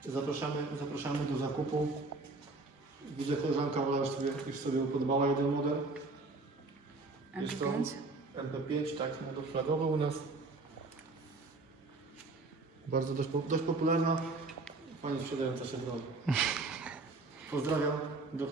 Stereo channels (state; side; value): quieter; left; 3.4 dB